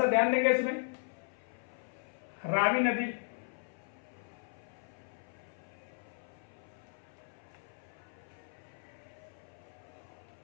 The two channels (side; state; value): right; silent; 53 dB below the other